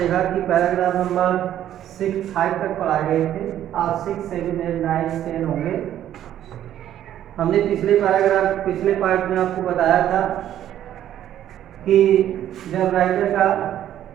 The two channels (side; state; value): left; quieter; 11.5 dB